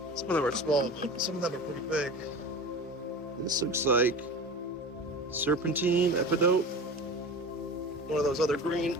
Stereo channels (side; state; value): both; normal; correlation 0.33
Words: Some of them are small, but some of them are pretty big. This looks like serpentine, epidote, one of those other green